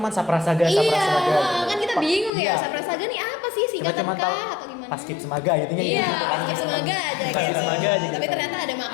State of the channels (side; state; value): right; drops out; at 2.3 s